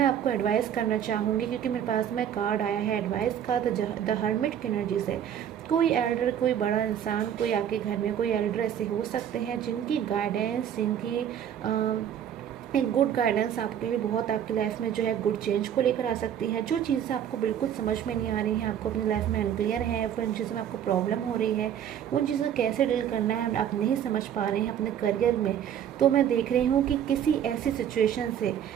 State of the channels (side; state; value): left; quieter; 9.5 dB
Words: आपको एडवाइस करना चाहूँगी, क्योंकि मेरे पास में कार्ड आया है एडवाइस का, द हर्मिट की एनर्जी से। कोई एल्डर, कोई बड़ा इंसान, कोई आपके घर में कोई एल्डर ऐसे हो सकते हैं जिनकी गाइडेंस, जिनकी एक गुड गाइडेंस आपके लिए बहुत आपकी लाइफ में जो है गुड चेंज को लेकर आ सकती है। जो चीज़ें आपको बिल्कुल समझ में नहीं आ रही हैं, आपको अपनी लाइफ में अनक्लियर है, फिर उन चीज़ों में आपको प्रॉब्लम हो रही है, उन चीज़ों को कैसे डील करना है आप नहीं समझ पा रहे हैं अपने करियर में, तो मैं देख रही हूँ कि किसी ऐसी सिचुएशन से